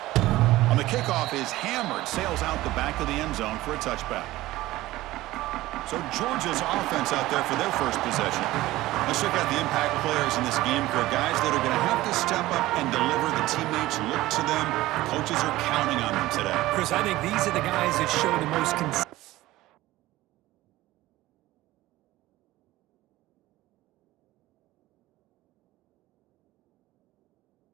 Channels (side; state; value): left; quieter; 17.1 dB